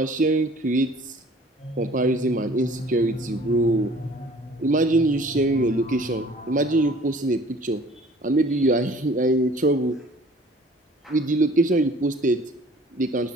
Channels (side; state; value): both; normal; correlation 0.51